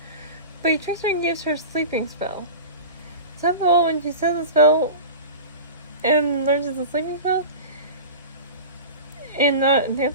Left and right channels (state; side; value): inverted; both; correlation -0.32